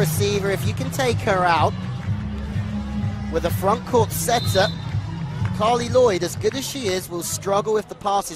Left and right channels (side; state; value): both; identical; correlation 1.00